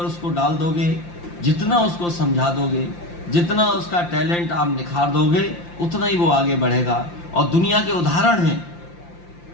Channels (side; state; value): right; late; 5.8 ms